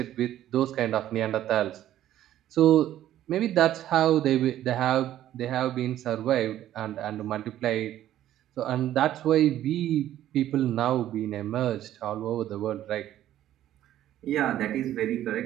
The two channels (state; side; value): quieter; left; 12.5 dB